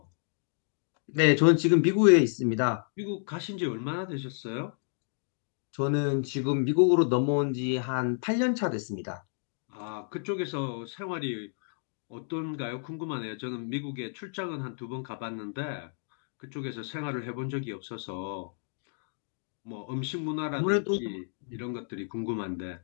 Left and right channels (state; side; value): silent; right; digital silence